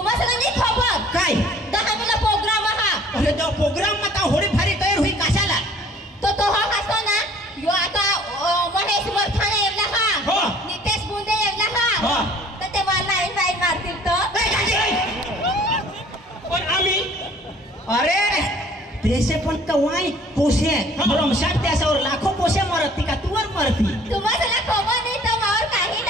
नाही खबर काय 10 मिला प्रोग्राम हा अरे तो प्रोग्राम मध्ये होडी भारी तयार होई कशाला तो हा असतो ना यो आता महेश मरखाने येवला हो. हा नितेश बुंदे येवला हो. हा तर ते मला लाईन वाईन मारतील पण आम्ही अरे देशे पण कवाई पोसे ब्रह्मशाट त्याच्यावर लाखो पोसे मरती का तुवर मरती तुम्हाला खबर नाही तर मावर काही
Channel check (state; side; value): normal; both; correlation 0.53